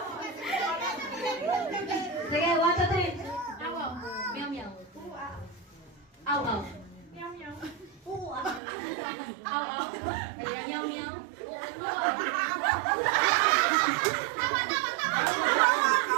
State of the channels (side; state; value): left; drops out; at 8.6 s